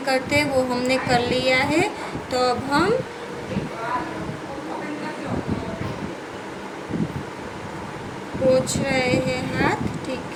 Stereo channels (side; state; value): both; identical; correlation 1.00